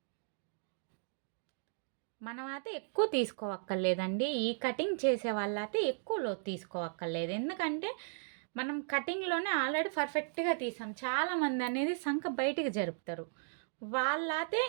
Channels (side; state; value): left; silent; digital silence